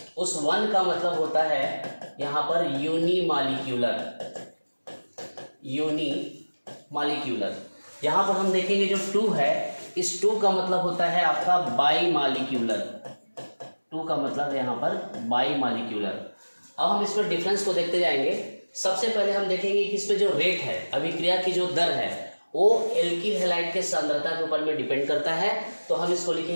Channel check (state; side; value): inverted; both; correlation -1.00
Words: उस 1 का मतलब होता है यहाँ पर यूनिमॉलिक्यूलर। यहाँ पर हम देखेंगे जो 2 है, इस 2 का मतलब होता है आपका बाईमॉलिक्यूलर। 2 का मतलब है यहाँ पर बाईमॉलिक्यूलर। अब हम इसमें डिफरेंस को देखते जाएंगे। सबसे पहले हम देखेंगे कि इसमें जो रेट है, अभिक्रिया की जो दर है, वो एल्किल हैलाइड के सांद्रता के ऊपर में डिपेंड करता है। तो हम इसको